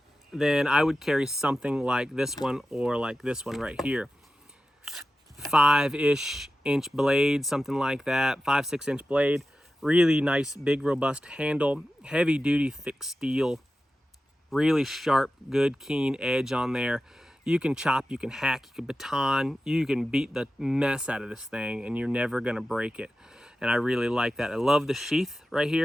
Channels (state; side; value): normal; both; correlation 0.93